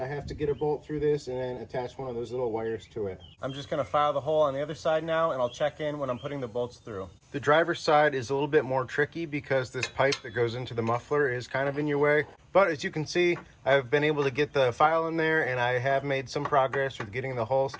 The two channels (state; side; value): identical; both; correlation 1.00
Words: have to get a bolt through this and then attach one of those little wires to it. I'm just going to file the hole on the other side now, and I'll check in when I'm putting the bolts through. The driver's side is a little bit more tricky because this pipe that goes into the muffler is kind of in your way. But as you can see, I've been able to get the file in there, and I have made some progress with getting the hole